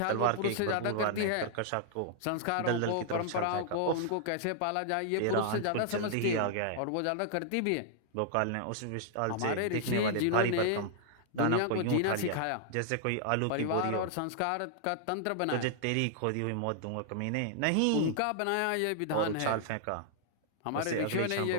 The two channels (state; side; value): different; both; correlation -0.01